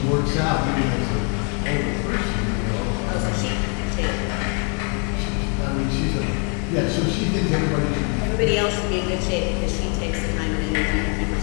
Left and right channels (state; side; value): quieter; right; 38.5 dB